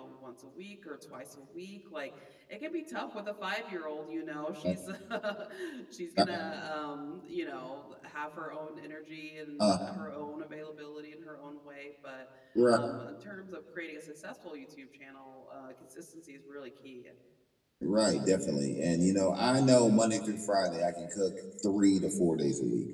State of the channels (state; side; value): identical; both; correlation 1.00